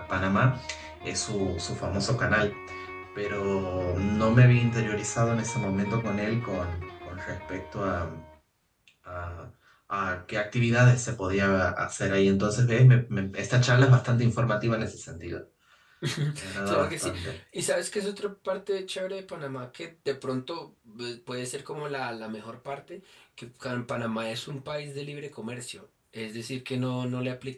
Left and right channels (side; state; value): both; identical; correlation 1.00